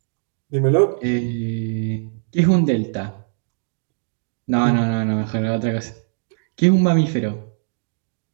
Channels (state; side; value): silent; left; digital silence